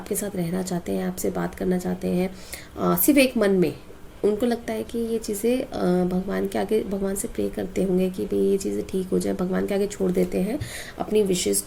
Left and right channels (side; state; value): both; identical; correlation 1.00